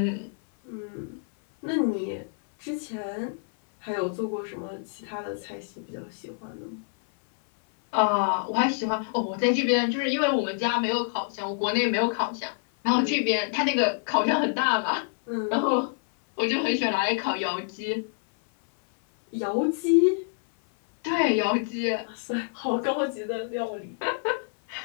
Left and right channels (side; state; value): right; silent; 57 dB below the other